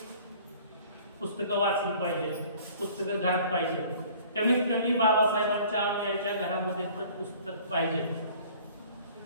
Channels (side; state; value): both; inverted; correlation -0.51